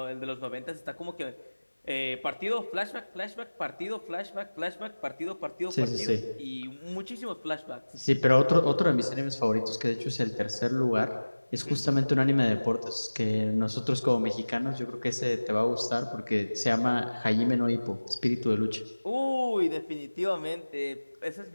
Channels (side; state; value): both; inverted; correlation -1.00